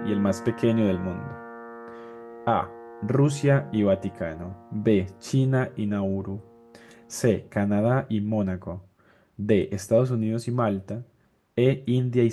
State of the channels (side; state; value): both; identical; correlation 1.00